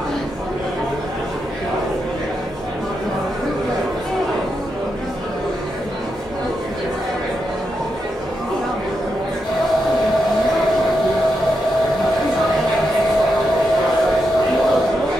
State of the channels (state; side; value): normal; both; correlation 0.85